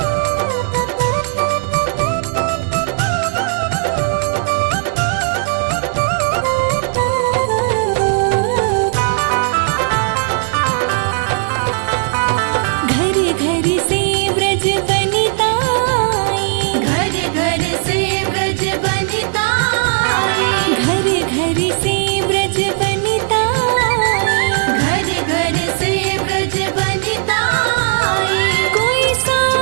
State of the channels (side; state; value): left; silent; digital silence